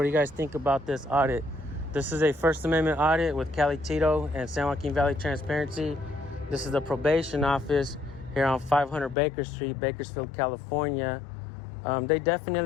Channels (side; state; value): right; drops out; at 9.2 s